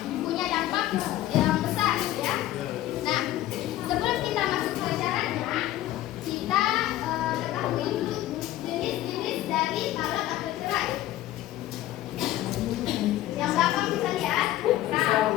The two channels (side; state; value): right; quieter; 14.5 dB